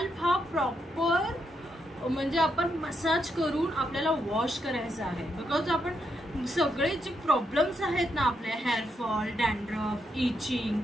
हा प्रॉपर म्हणजे आपण मसाज करून आपल्याला वॉश करायचा आहे। बिकॉज आपण सगळे जे प्रॉब्लेम्स आहेत ना आपले हेअरफॉल, डॅन्ड्रफ, इचिंग,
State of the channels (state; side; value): normal; both; correlation 0.80